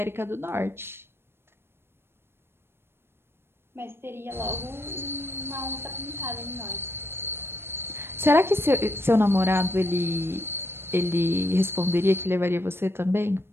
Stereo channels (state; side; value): late; left; 0.12 ms